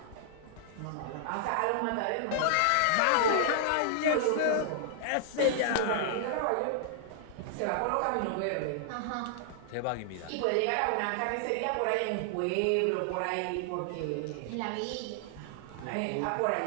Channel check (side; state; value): both; different; correlation -0.01